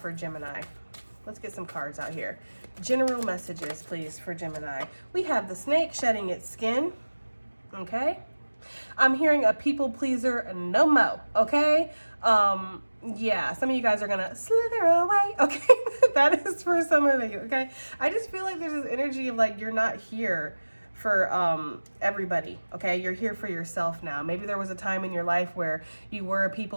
Gemini? Let's get some cards out here. General messages, please, for Gemini. We have the snake shedding its skin, okay? I'm hearing a people pleaser no mo, okay? Yeah, some of you guys are gonna slither away, okay? That is for some of you, okay? I just feel like there's this energy of like, you're not here for everybody, okay? You're here for yourself now. Maybe there was a time in your life where you were a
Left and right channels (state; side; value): inverted; both; correlation -1.00